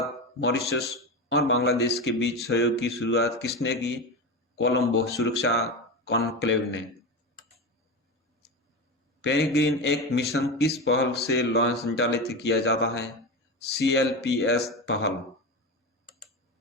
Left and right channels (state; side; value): normal; both; correlation 0.20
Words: मॉरिशस और बांग्लादेश के बीच सहयोग की शुरुआत किसने की? कोलंबो सुरक्षा कॉन्क्लेव ने। पेरिग्रीन एक मिशन किस पहल से संचालित किया जाता है? CLPS पहल।